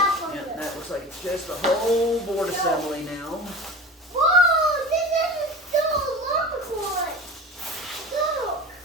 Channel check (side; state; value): both; normal; correlation 0.33